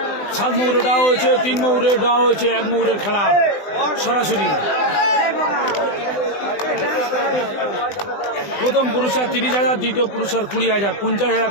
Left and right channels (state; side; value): late; right; 20 ms